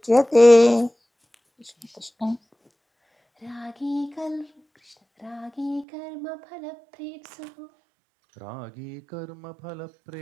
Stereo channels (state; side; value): drops out; left; at 5.9 s